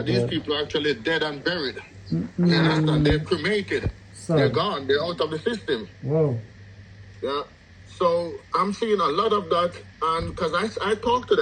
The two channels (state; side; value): identical; both; correlation 1.00